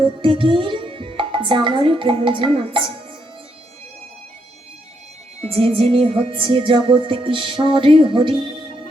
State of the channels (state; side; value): normal; both; correlation 0.77